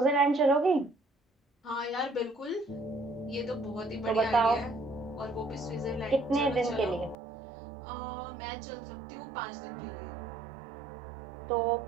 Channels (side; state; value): left; drops out; at 7.2 s